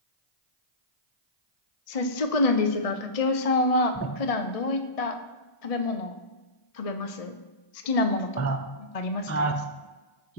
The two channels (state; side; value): late; right; 1.6 ms